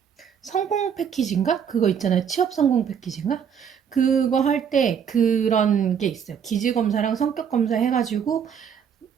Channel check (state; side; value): quieter; left; 7.6 dB